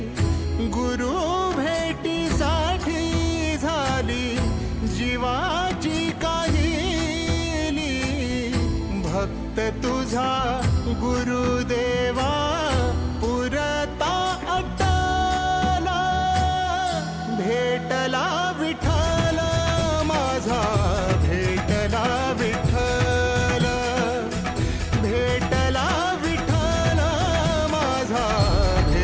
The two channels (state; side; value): identical; both; correlation 1.00